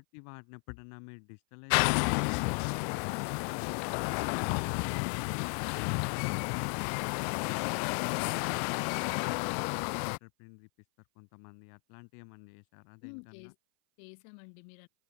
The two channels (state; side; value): silent; right; 54 dB below the other